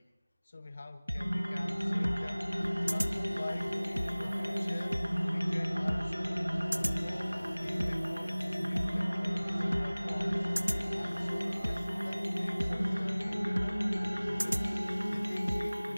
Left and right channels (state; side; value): inverted; both; correlation -1.00